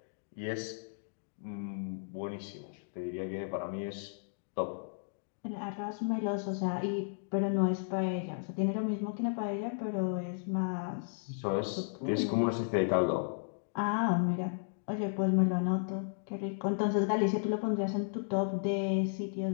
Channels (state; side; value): silent; right; digital silence